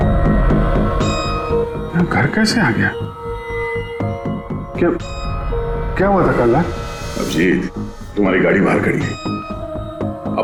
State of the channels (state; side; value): identical; both; correlation 1.00